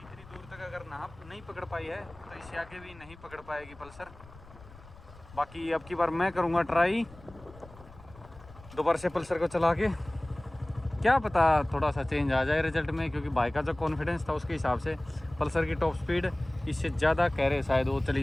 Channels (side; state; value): left; noise; rumble, 21 dB below the sound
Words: दूर तक अगर नाप नहीं पकड़ पाई है तो इससे आगे भी नहीं पकड़ पाएगी पल्सर। बाकी अब की बार मैं करूँगा ट्राई दोबारा से पल्सर को चला के, क्या पता थोड़ा सा चेंज आ जाए रिजल्ट में, क्योंकि बाइक का जो कॉन्फिडेंस था उसके हिसाब से पल्सर की टॉप स्पीड इससे ज़्यादा कह रहे शायद वो चली